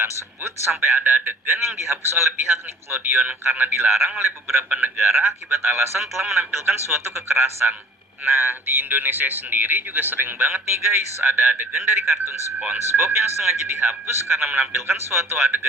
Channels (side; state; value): both; normal; correlation 0.48